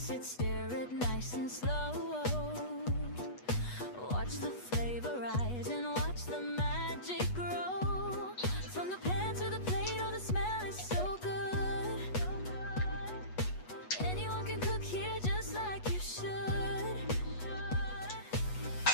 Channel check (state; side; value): late; right; 8.2 ms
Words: it, stir it nice and slow. Watch the flavor rise and watch the magic grow. From the pan to the plate, oh, the smell is so good. Anyone can cook here just like you should.